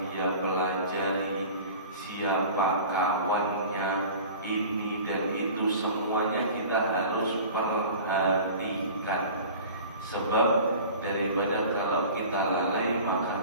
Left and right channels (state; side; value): inverted; both; correlation -0.41